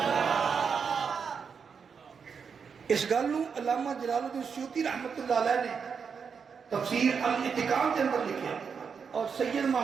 اس گل نو علامہ جلال الدین سیوطی رحمت اللہ علیہ نے تفسیر الاتقان کے اندر لکھیا اور سید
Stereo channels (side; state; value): left; quieter; 6.2 dB